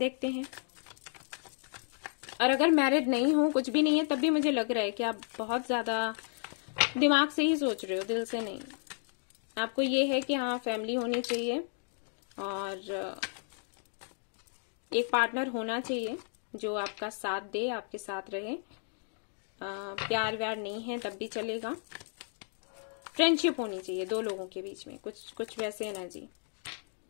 हैं। और अगर मैरिड नहीं हो, कुछ भी नहीं है, तब भी मुझे लग रहा है कि आप बहुत ज्यादा दिमाग से ही सोच रहे हो, दिल से नहीं। आपको ये है कि हाँ फैमिली होनी चाहिए और एक पार्टनर होना चाहिए जो आपका साथ दे, आपके साथ रहे। प्यार व्यार नहीं है तब भी चलेगा। फ्रेंडशिप होनी चाहिए दो लोगों के बीच में, कुछ वैसे एनर्जी।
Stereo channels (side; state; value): right; silent; digital silence